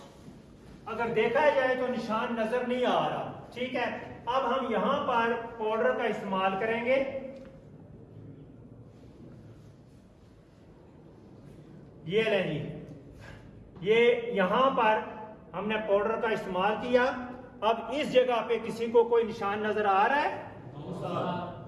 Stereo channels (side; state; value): both; identical; correlation 1.00